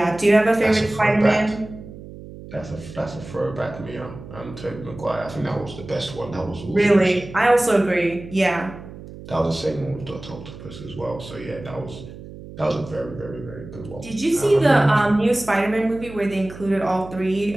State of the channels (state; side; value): noise; right; hum, 15 dB below the sound